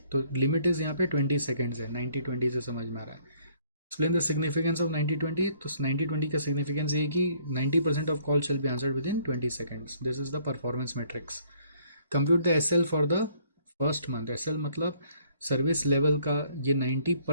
तो limit is यहाँ पे 20 seconds है, 90-20 से समझ में आ रहा है। एक्सप्लेन द सिग्निफिकेंस ऑफ 90-20, तो 90-20 का सिग्निफिकेंस ये कि 90% of call shall be answered within 20 seconds, this is the performance matrix. Compute the SL for the first month, SL मतलब सर्विस लेवल का, ये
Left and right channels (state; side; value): inverted; both; correlation -0.63